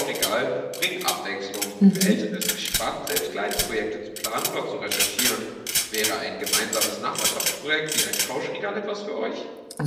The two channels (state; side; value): identical; both; correlation 1.00